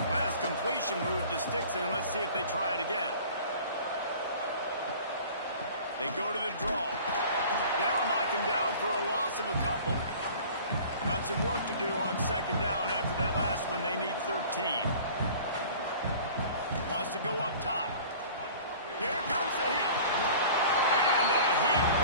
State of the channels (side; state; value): both; inverted; correlation -0.45